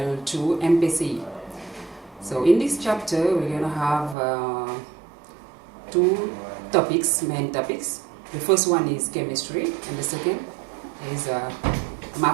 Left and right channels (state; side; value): drops out; left; at 4.2 s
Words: MPCI. So in this chapter we're going to have two topics, main topics. The first one is chemistry and the second is